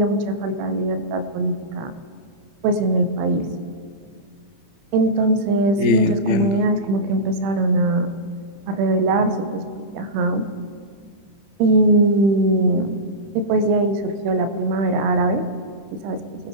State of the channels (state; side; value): late; left; 30 ms